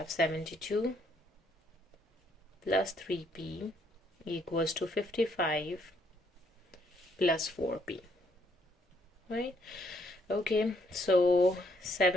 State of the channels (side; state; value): both; normal; correlation 0.70